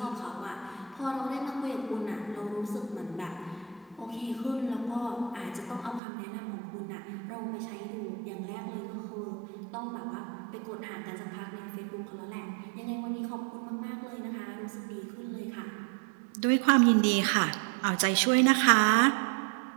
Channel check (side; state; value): left; drops out; at 6.0 s